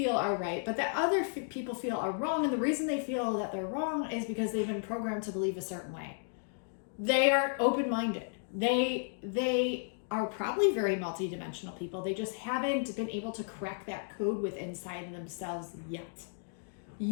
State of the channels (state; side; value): silent; right; digital silence